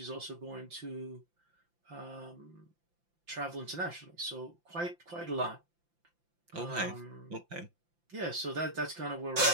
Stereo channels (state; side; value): late; left; 5.8 ms